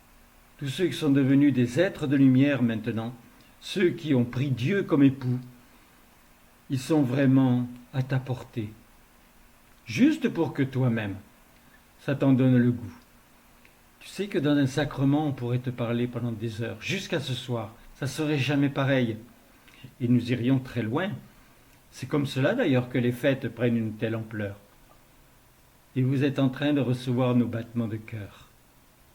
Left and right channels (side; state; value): both; identical; correlation 1.00